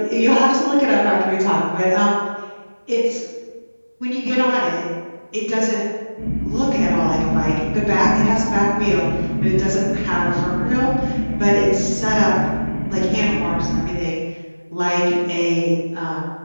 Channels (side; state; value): both; inverted; correlation -1.00